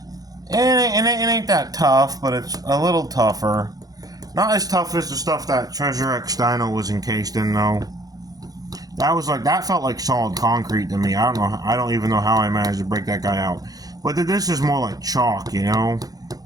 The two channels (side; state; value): left; late; 0.18 ms